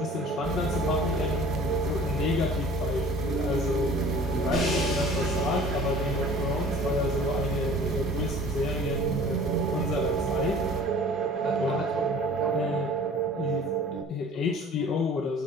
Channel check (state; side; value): normal; both; correlation 0.47